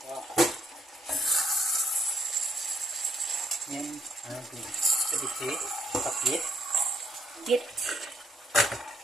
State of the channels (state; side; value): normal; both; correlation 0.71